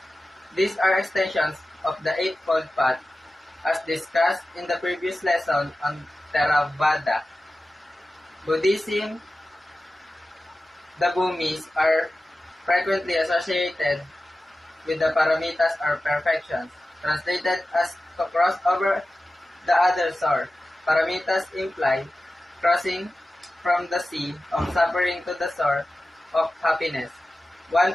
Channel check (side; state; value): both; normal; correlation 0.95